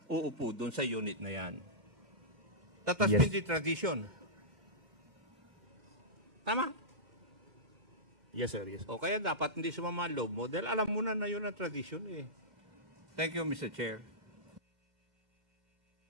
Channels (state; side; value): late; left; 2.1 ms